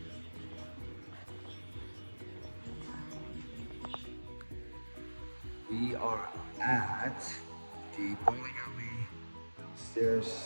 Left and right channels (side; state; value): both; inverted; correlation -1.00